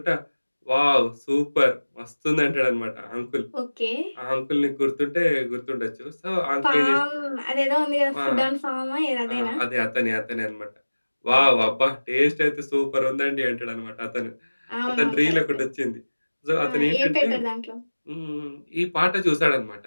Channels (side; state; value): both; inverted; correlation -1.00